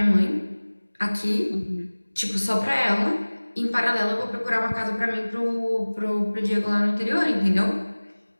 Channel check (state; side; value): inverted; both; correlation -1.00